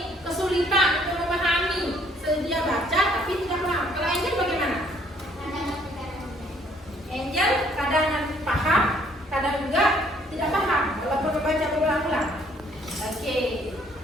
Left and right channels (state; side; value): normal; both; correlation 0.63